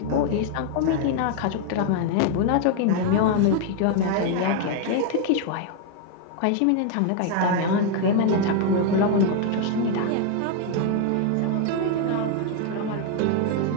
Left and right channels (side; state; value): both; different; correlation 0.00